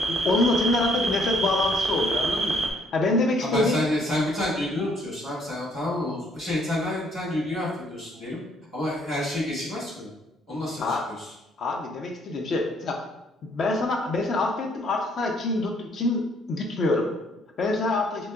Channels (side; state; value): both; normal; correlation 0.65